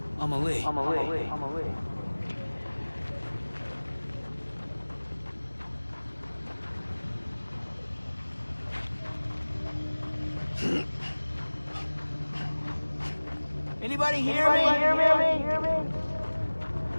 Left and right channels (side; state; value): both; inverted; correlation -1.00